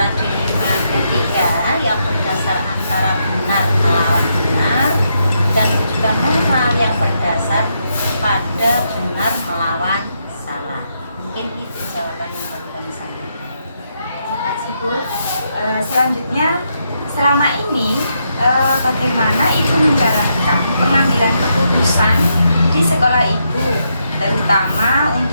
dilema etika yang berdasar antara benar melawan benar dan juga moral yang berdasar pada benar melawan salah. Mungkin itu jawaban yang perlu kami sampaikan. Terima kasih Bu. Selanjutnya, selama ini bagaimana Ibu menjalankan pengambilan keputusan di sekolah Ibu, terutama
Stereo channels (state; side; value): inverted; both; correlation -0.79